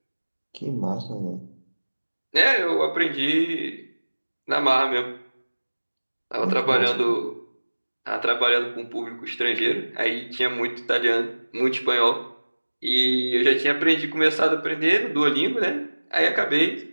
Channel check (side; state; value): both; inverted; correlation -1.00